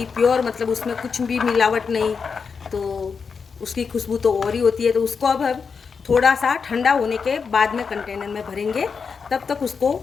प्योर, मतलब उसमें कुछ भी मिलावट नहीं, तो उसकी खुशबू तो और ही होती है। तो उसको अब हम थोड़ा सा ठंडा होने के बाद में कंटेनर में भरेंगे, तब तक उसको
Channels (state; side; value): quieter; right; 5.6 dB